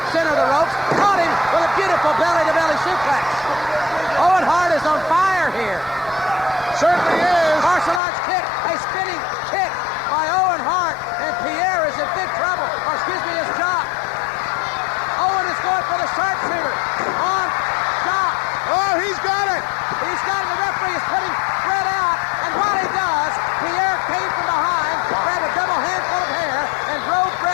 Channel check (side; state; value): right; drops out; at 8.0 s